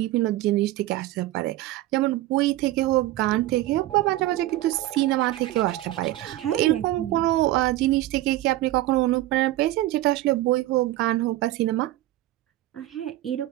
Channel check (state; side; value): quieter; left; 15.9 dB